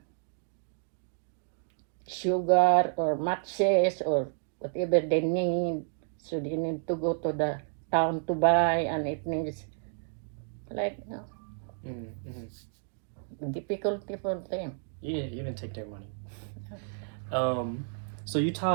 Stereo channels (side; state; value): left; silent; digital silence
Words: sugar or matches or whatever they need. So they need to go to the town to buy, and it needs like difficulty for them. Yeah, you can take their money. So you